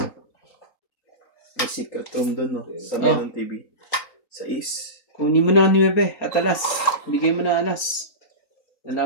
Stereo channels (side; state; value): right; late; 3.9 ms